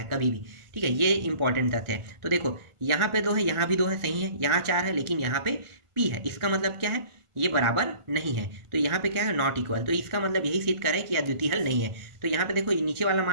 कभी भी, ठीक है, ये इंपॉर्टेंट तथ्य है। तो देखो यहाँ पे 2 है, यहाँ भी 2 है, सही है, यहाँ 4 है, लेकिन यहाँ पे P है, इसका मतलब क्या है, ये बराबर नहीं है। तो यहाँ पे क्या है, नॉट इक्वल, तो इसका मतलब यही सिद्ध कर है कि अद्वितीय हल नहीं है। तो यहाँ पे देखो नीचे वाला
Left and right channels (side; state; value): left; late; 1.5 ms